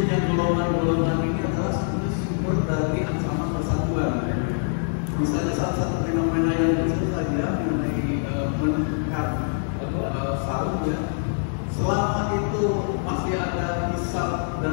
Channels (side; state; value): right; silent; digital silence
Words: golongan-golongan ini adalah sebenarnya sumber dari ancaman persatuan. Misalnya salah satu fenomena yang kecil saja mengenai meningkat sarung ya. Selama itu masih ada hisab